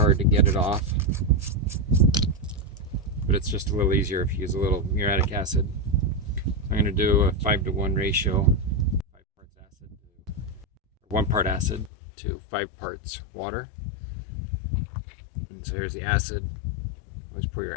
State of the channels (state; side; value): drops out; right; at 11.9 s